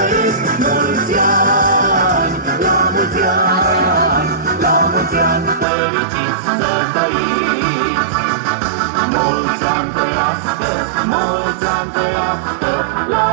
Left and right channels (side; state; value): left; drops out; at 5.7 s